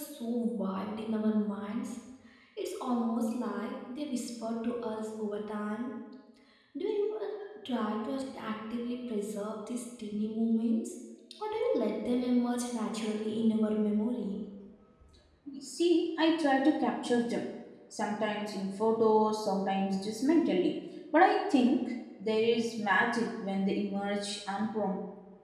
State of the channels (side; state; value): both; identical; correlation 1.00